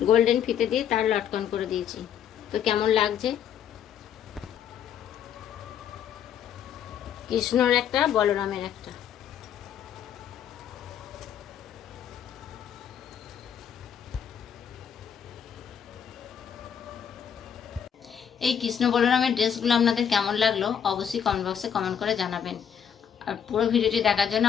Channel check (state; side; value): quieter; right; 8.5 dB